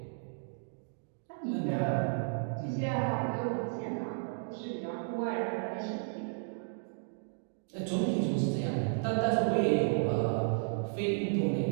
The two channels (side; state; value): left; silent; digital silence